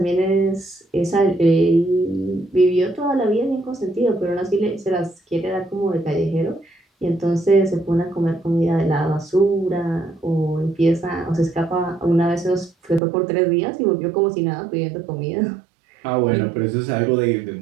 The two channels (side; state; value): left; drops out; at 13.0 s